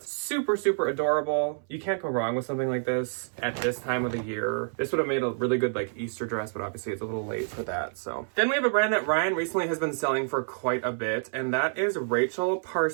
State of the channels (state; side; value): silent; left; 59 dB below the other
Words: Super, super adorable. You can't go wrong with something like this at this time of the year. This would have made a really good like Easter dress, but obviously it's a little late for that. So then we have a brand that Ryan recently has been selling for quite a bit, and that is Rachel